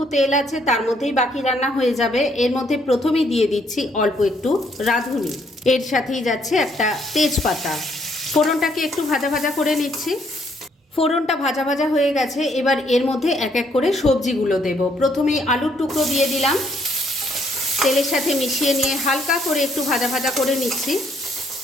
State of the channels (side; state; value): both; normal; correlation 0.69